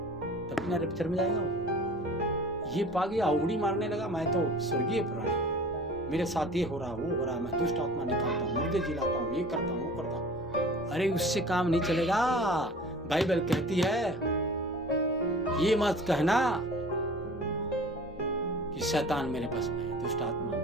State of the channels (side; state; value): both; normal; correlation 0.43